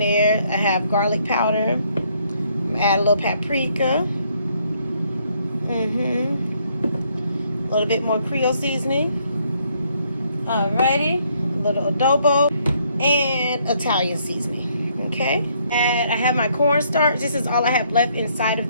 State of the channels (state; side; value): inverted; both; correlation -0.69